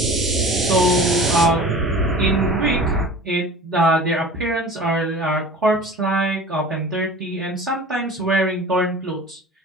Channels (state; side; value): normal; both; correlation 0.39